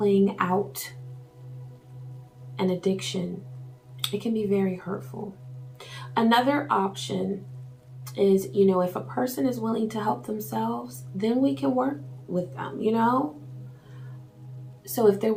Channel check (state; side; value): identical; both; correlation 1.00